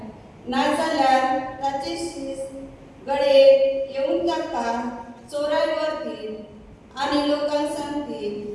नाजाल्यार ताचे शीस गडे येवन ताका चोराय व्हरतील आनी लोकांक सांगतील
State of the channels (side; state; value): both; identical; correlation 1.00